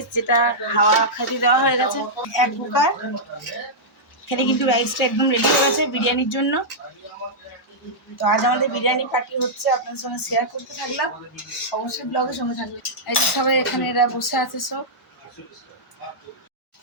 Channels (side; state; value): both; normal; correlation -0.10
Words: যেটা হাওয়া খাতি দেওয়া হয়ে গেছে, এক কুকার। এখানে কিন্তু রাইসটা একদম রেডি হয়ে গেছে বিরিয়ানির জন্য। তো আজ আমাদের বিরিয়ানি পার্টি হচ্ছে, আপনাদের সঙ্গে শেয়ার করতে থাকলাম, অবশ্যই ব্লগের সঙ্গে থাকবে। এই যে সবাই এখানে এরা বসে আছে সব।